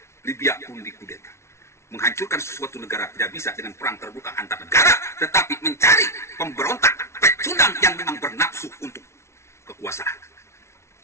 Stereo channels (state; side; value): late; right; 0.13 ms